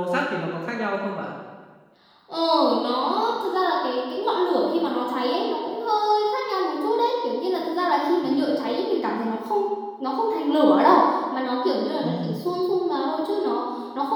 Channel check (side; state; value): both; identical; correlation 1.00